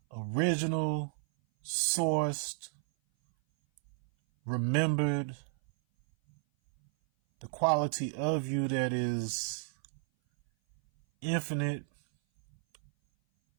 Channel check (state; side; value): silent; left; 56 dB below the other